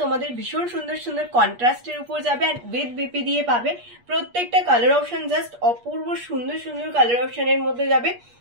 তোমাদের ভীষণ সুন্দর সুন্দর কন্ট্রাস্টের উপর যাবে আর উইথ বিপি দিয়ে পাবে। প্রত্যেকটা কালার অপশন জাস্ট অপূর্ব সুন্দর সুন্দর কালার অপশনের মধ্যে যাবে।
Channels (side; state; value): left; late; 8.4 ms